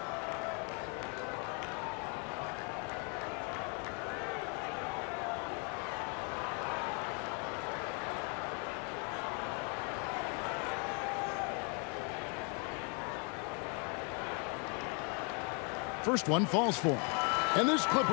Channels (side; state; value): right; quieter; 36.6 dB